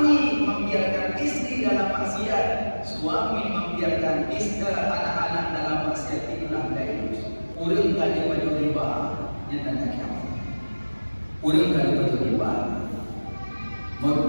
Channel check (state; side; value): inverted; both; correlation -1.00